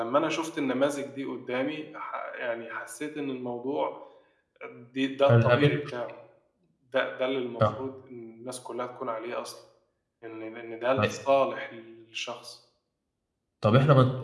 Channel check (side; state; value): both; identical; correlation 1.00